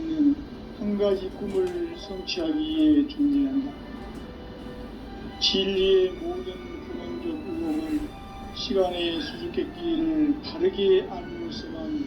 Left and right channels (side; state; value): both; identical; correlation 1.00